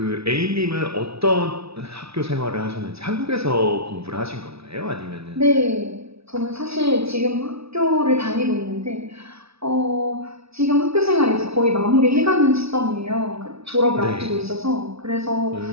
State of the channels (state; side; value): late; left; 0.78 ms